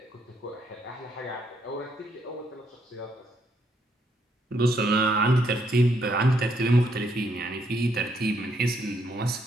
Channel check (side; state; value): both; normal; correlation 0.73